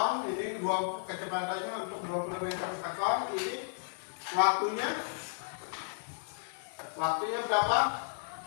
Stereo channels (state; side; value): silent; right; digital silence